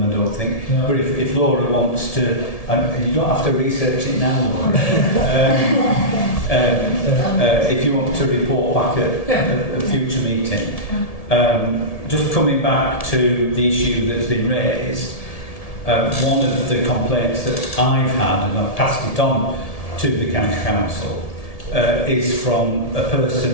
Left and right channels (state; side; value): late; right; 1.7 ms